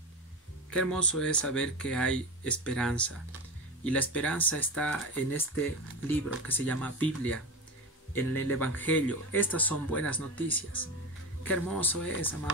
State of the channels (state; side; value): normal; both; correlation 0.23